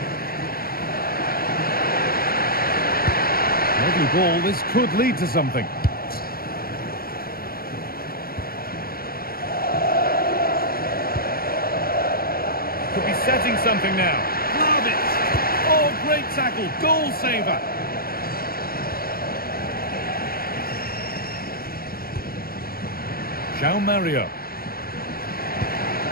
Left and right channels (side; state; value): right; late; 0.43 ms